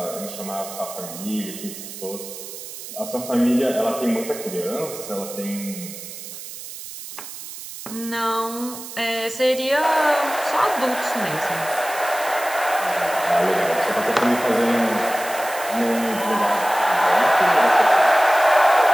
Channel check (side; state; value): right; noise; hiss, 12 dB below the sound